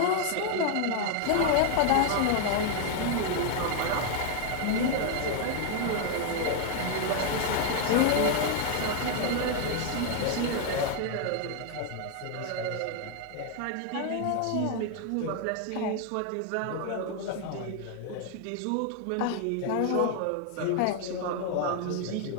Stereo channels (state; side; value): different; both; correlation 0.00